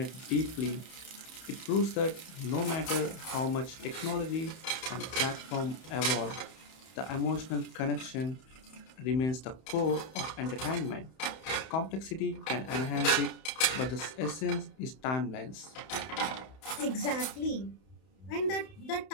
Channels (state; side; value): late; right; 31 ms